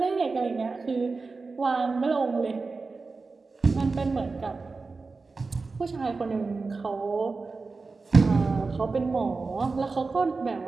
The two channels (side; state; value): left; quieter; 4.1 dB